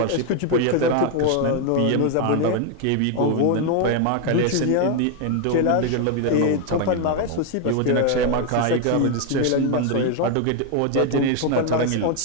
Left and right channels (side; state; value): both; different; correlation 0.01